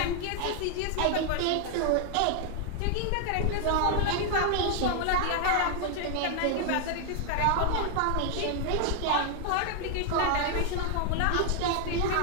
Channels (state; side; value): different; both; correlation 0.00